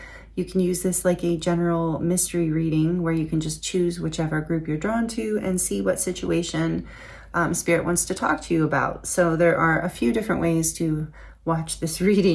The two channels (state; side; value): identical; both; correlation 1.00